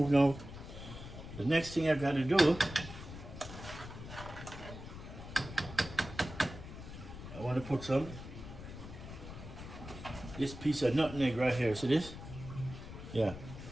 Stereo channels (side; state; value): left; noise; rumble, 12 dB below the sound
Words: now. The next thing I gotta do, I wanna put this piece of nutmeg right here. See this? Yeah.